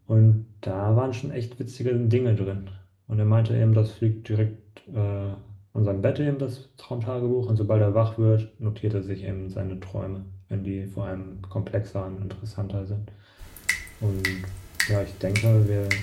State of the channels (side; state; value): both; identical; correlation 1.00